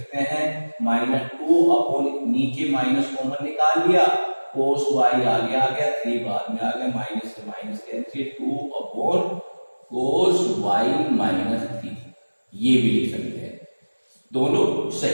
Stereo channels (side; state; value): both; inverted; correlation -1.00